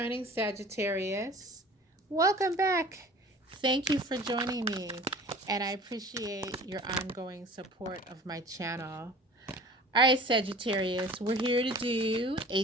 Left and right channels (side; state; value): both; normal; correlation 0.44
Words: Sagittarius, welcome back. Thank you for joining me, and I appreciate your ongoing support of my channel. All right, Sagittarius, we're here to do a